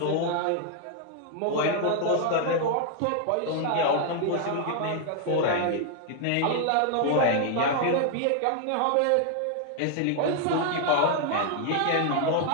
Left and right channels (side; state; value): both; different; correlation 0.00